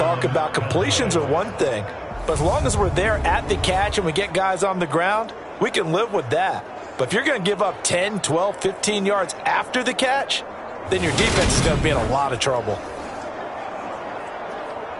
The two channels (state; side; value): identical; both; correlation 1.00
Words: about completions are one thing, but as long as we're there at the catch and we get guys on the ground, we can live with that. But if you're going to give up 10, 12, 15 yards after the catch, then your defense is going to be in a lot of trouble.